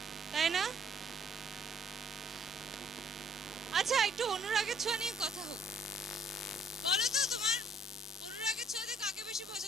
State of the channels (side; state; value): both; normal; correlation 0.63